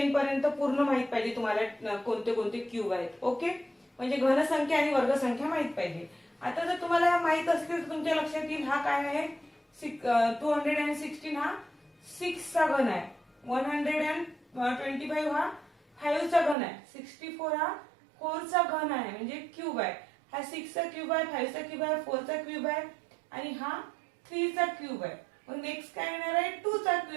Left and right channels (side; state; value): left; drops out; at 16.6 s